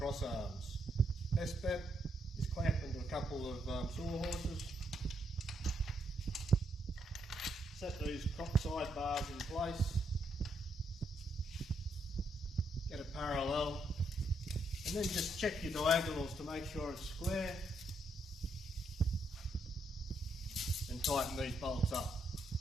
arms. Best bet is clamp them to a couple of sawhorses. Set these side bars in place. Get it parallel. And then just check your diagonals to make sure it's square. And tighten these bolts up.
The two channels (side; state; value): both; normal; correlation 0.77